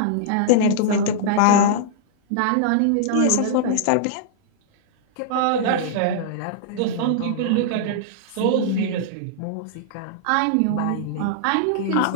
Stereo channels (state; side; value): different; both; correlation -0.01